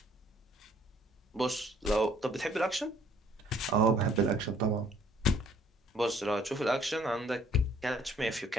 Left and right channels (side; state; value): both; normal; correlation 0.60